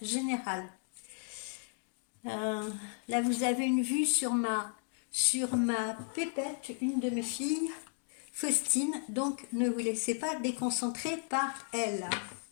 général. Euh, Là, vous avez une vue sur ma pépette, une de mes filles, Faustine, donc ne vous laissez pas déconcentrer par elle.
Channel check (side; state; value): right; silent; 55 dB below the other